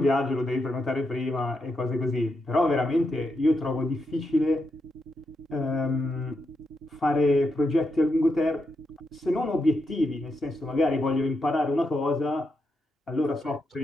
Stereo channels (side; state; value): both; normal; correlation 0.83